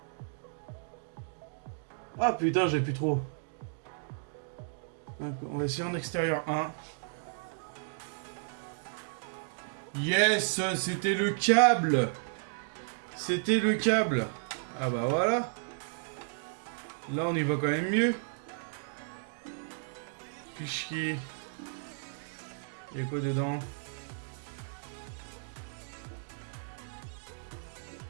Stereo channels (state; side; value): silent; left; digital silence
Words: Ah putain, j'ai plus trop. On va essayer en extérieur 1. Yes, c'était le câble. C'était le câble. Ah bah voilà. Là, on y va quand même mieux. Fichier. Il y a quoi dedans?